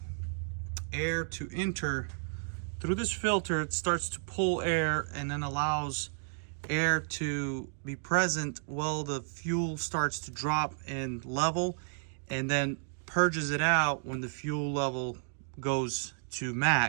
air to enter through this filter. It starts to pull air and then allows air to be present while the fuel starts to drop in level, and then purges it out when the fuel level goes to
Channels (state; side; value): silent; left; digital silence